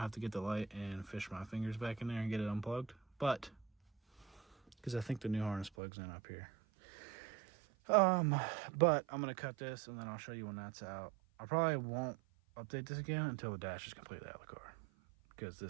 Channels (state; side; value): drops out; left; at 5.7 s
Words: have to get the light and fish my fingers back in there and get it unplugged. But, because I think the new harness plugs in up here. But I'm gonna cut this and then I'll show you when that's out. I probably won't update this again until the dash is completely out of the car, because